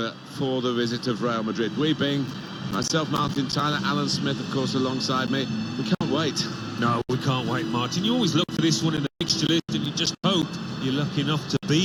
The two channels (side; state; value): both; identical; correlation 1.00